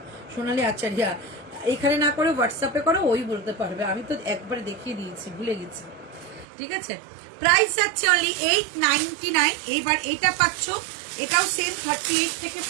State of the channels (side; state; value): left; drops out; at 6.5 s